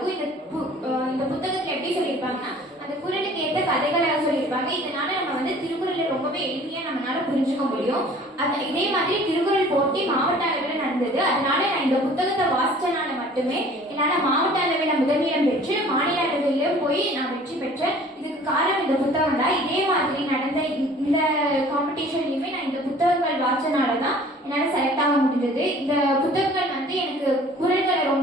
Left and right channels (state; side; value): normal; both; correlation 0.50